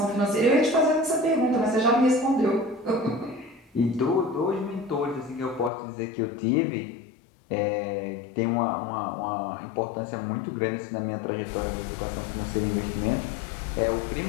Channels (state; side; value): drops out; right; at 5.7 s